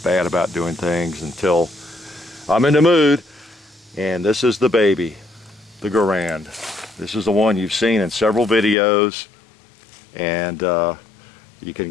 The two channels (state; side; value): drops out; right; at 8.8 s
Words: bad about doing things until I'm in the mood. And this is the baby, the Garand. This is the one you've seen in several videos, and you can